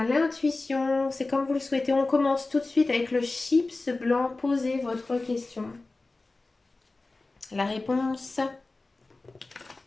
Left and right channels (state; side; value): quieter; right; 3.3 dB